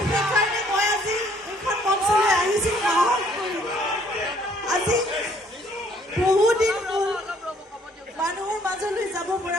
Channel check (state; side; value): normal; both; correlation 0.63